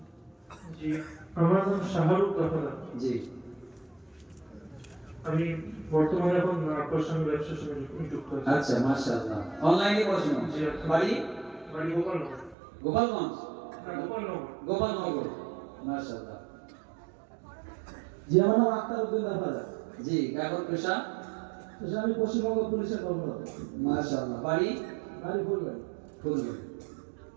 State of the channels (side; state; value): left; drops out; at 12.6 s